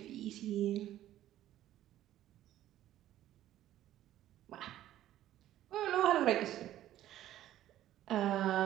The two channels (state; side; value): quieter; left; 13.1 dB